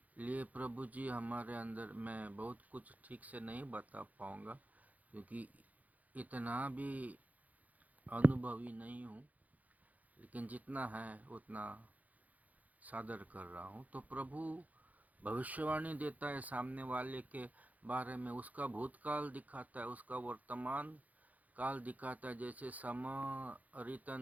लिए प्रभु जी हमारे अंदर, मैं बहुत कुछ ठीक से नहीं बता पाऊँगा क्योंकि इतना भी अनुभवी नहीं हूँ, लेकिन जितना है उतना सादर कर रहा हूँ। तो प्रभु भविष्यवाणी देता है सामने वाले के बारे में, उसका भूतकाल दिखाता है, उसका वर्तमान काल दिखाता है। जैसे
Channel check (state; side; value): late; left; 0.077 ms